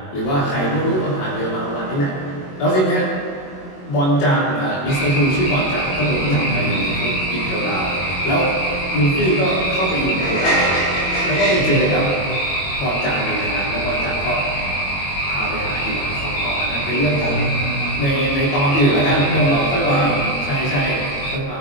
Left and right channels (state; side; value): late; right; 22 ms